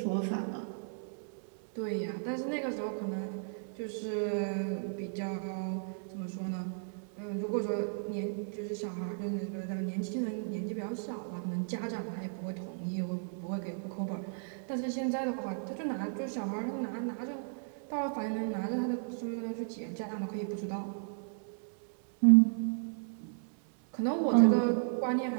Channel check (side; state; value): left; silent; 55 dB below the other